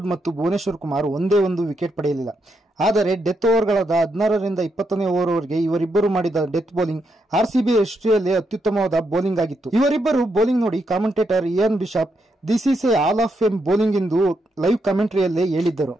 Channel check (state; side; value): normal; both; correlation 0.80